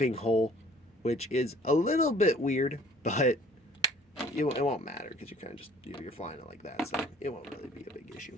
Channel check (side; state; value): both; normal; correlation 0.54